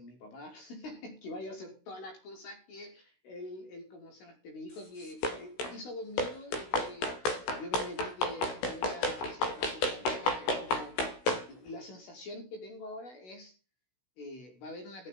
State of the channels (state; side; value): late; right; 16 ms